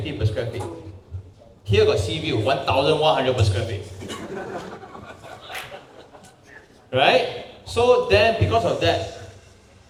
per square feet. Here got sea view, 1,100 per square feet. Right? So then, because of that,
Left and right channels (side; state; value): both; identical; correlation 1.00